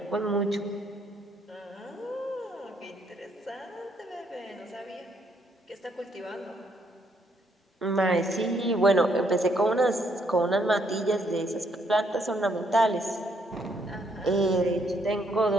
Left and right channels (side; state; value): both; normal; correlation 0.71